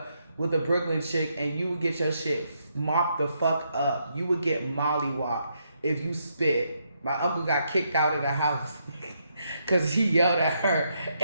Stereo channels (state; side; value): inverted; both; correlation -0.78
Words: with a Brooklyn chick and you would get your shit mopped the fuck up. You would get mollywopped if you spit. My uncle got kicked out of the house because he yelled at her